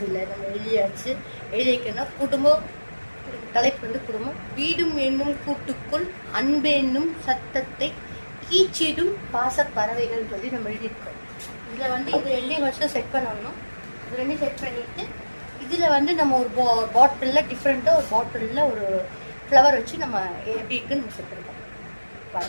இல்லை நம்ம எழுதியாச்சு. எழுதி வைக்கணும். குடும்பம் தலைப்பு வந்து குடும்பம். வீடும் என்னும் கூட்டுக்குள் அன்பு என்னும் சத்தத்தை கீச்சிடும் பாச பறவைகள் சொல்லி நம்ம எழுதியிருக்கோம். இதில் வந்து இது 2 வருஷம் செட் பண்ணணும். இது 2 செட் பண்ணிட்டு இதில் வந்து நம்ம ஒரு பாட்டிலில் டிஃப்ரெண்ட்டாக ஒரு பாட்டிலில் ஒரு ஃப்ளவர் வச்சு நம்ம எப்படி இருக்குன்னு நம்ம செட் பண்ணிருக்கோம்.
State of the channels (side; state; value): both; inverted; correlation -1.00